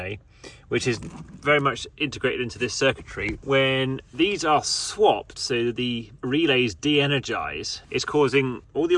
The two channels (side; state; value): both; identical; correlation 1.00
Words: which is very much integrated into this circuitry, when these are swapped, so the relays de-energize, it's causing all the